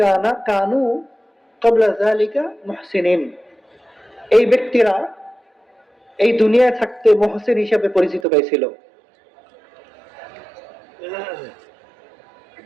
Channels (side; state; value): left; drops out; at 8.2 s